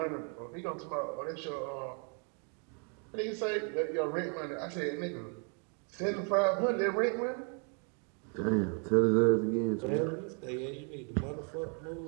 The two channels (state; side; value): quieter; left; 38.6 dB